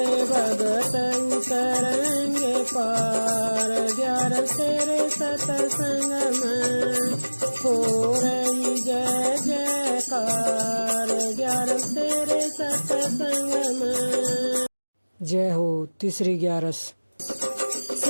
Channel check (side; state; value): both; inverted; correlation -1.00